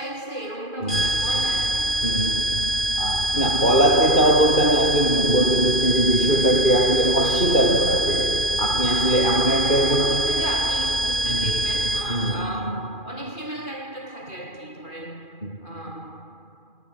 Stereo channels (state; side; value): late; right; 2.4 ms